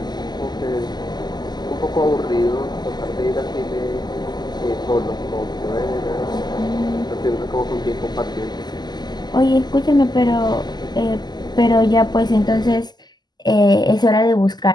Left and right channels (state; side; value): late; right; 0.21 ms